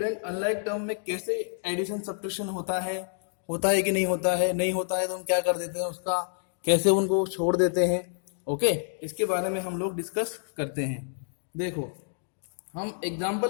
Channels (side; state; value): right; silent; digital silence